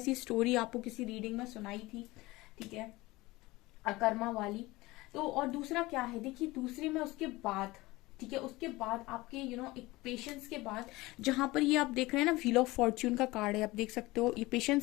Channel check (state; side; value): quieter; right; 20.4 dB